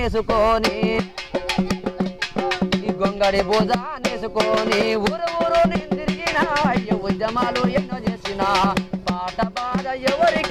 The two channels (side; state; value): both; identical; correlation 1.00